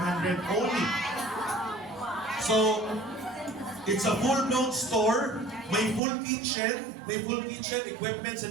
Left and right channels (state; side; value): drops out; left; at 6.0 s